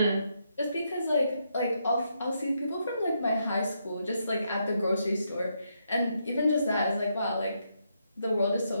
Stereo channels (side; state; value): both; inverted; correlation -0.79